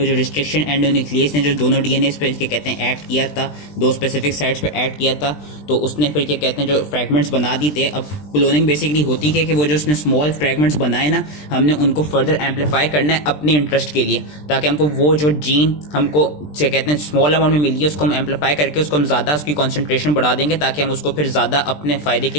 जो रिस्ट्रिक्शन एंडोन्यूक्लियस ने जो दोनों डीएनए पे क्या कहते हैं एक्ट किया था, दो स्पेसिफिक साइट्स पे एक्ट किया था, तो उसने फिर क्या कहते हैं जो फ्रेगमेंट्स बना दी थे। अब क्लोनिंग बेसिकली होती है कि वो जो उसने स्मॉल फ्रेगमेंट्स बनाए ना, हमने उनको फर्दर एम्पलीफाई करना है अपने इंटरेस्ट के लिए, ताकि हमको वो जो जीन हमको क्या कहते हैं स्मॉल अमाउंट में मिली है उसको हम एम्पलीफाई करके उसको हम ज़्यादा उसकी कॉन्सेंट्रेशन बढ़ा देंगे, ताकि हम उसको फिर ज़्यादा अपने फ़ायदे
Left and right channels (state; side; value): late; right; 20 ms